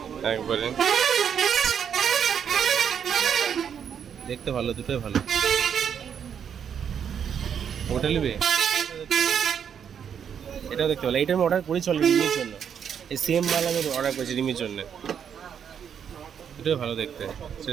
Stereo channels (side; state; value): left; quieter; 8.0 dB